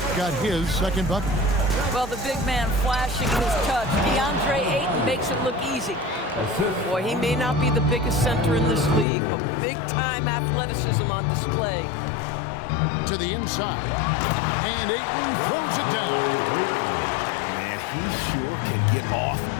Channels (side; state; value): right; drops out; at 9.1 s